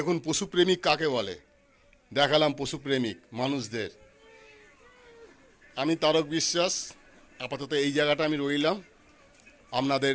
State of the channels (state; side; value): identical; both; correlation 1.00